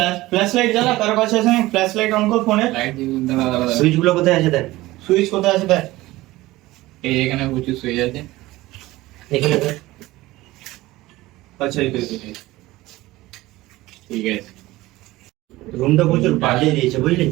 ফ্ল্যাশ লাইট জ্বালা কার কাছে আছে? ফ্ল্যাশ লাইট অন কর ফোনে। লাইট দাঁড়া সুইচ গুলো কোথায় আছে দেখ। সুইচ কোথায় আছে দেখ। এই এখানে প্রচুর সুইচ আছে এখানে দেখ। আচ্ছা এই তো ঠিক আছে রুমটা প্রচুর বাজে দিয়েছে বুঝলি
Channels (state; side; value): quieter; left; 18.3 dB